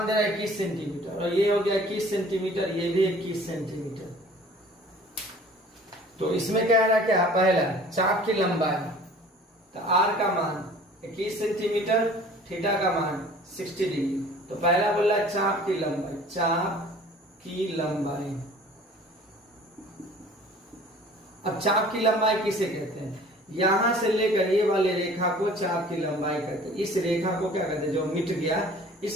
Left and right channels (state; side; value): normal; both; correlation 0.48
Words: दे रहा है 21 सेंटीमीटर, और ये हो गया 21 सेंटीमीटर, ये भी 21 सेंटीमीटर। तो इसमें क्या है, क्या पहला चाप की लंबाई, तो आर का मान 21 सेंटीमीटर, थीटा का मान 60 डिग्री। तो पहला बोला चाप की लंबाई, चाप की लंबाई। अब चाप की लंबाई किसे कहते हैं, यहां से लेकर ये वाले रेखा को चाप की लंबाई कहते हैं। इस रेखा को क्या कहते हैं, जो मिट गया,